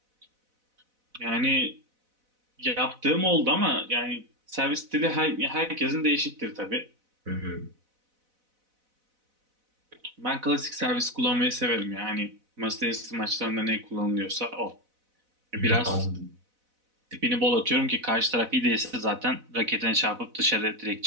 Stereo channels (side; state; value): left; late; 4.0 ms